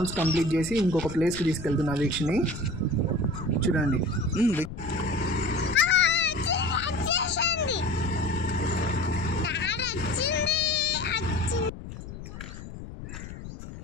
complete చేసి ఇంకొక ప్లేస్కి తీసుకెళ్తున్నా వీక్షని. చూడండి.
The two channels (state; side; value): noise; left; rumble, 11 dB below the sound